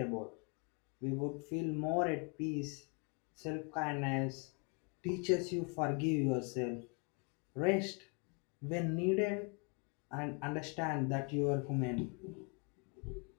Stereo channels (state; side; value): quieter; right; 34.2 dB